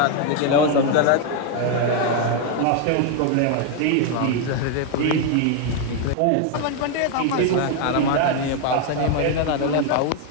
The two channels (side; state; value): both; different; correlation 0.01